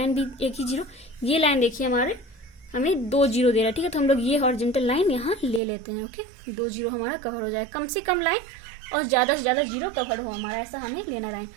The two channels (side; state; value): left; drops out; at 5.6 s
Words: भी एक ही 0, ये लाइन देखिए हमारे हमें 2 0 दे रहा है। ठीक है, तो हम लोग ये हॉरिजॉन्टल लाइन यहाँ ले लेते हैं। ओके, 2 0 हमारा कवर हो जाए, कम से कम लाइन और ज़्यादा से ज़्यादा 0 कवर हो हमारा, ऐसा हमें लेना लाइन।